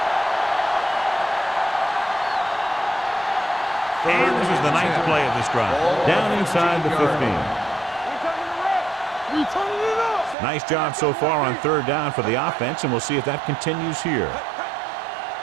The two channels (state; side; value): drops out; left; at 10.4 s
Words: And this is the 9th play of this drive. Down inside the 15. We turning it up. Nice job so far on 3rd down for the offense, and we'll see if that continues here.